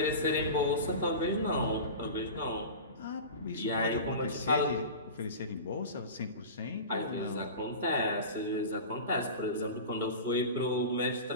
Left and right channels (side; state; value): both; inverted; correlation -0.31